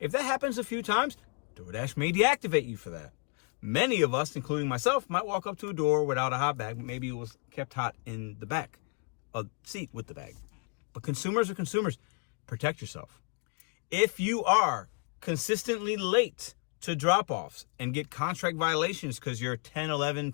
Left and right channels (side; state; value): right; quieter; 36.5 dB